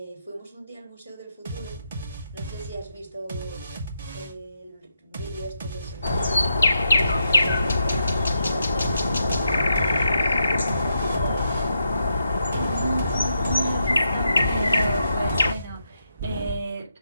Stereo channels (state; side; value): inverted; both; correlation -0.82